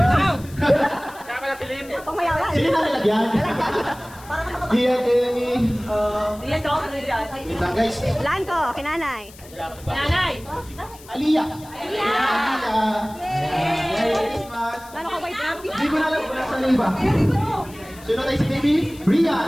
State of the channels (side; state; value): left; noise; hiss, 21 dB below the sound